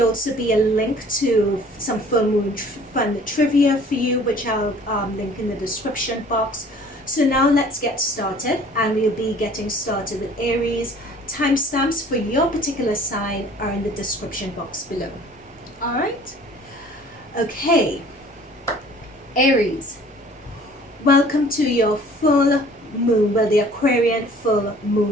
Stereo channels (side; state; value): both; normal; correlation 0.51